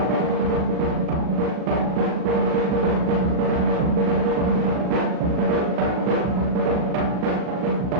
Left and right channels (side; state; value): both; normal; correlation -0.15